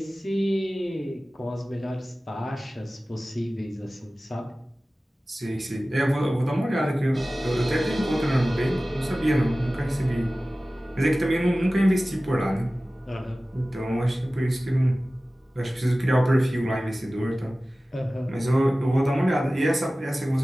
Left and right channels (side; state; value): both; normal; correlation 0.97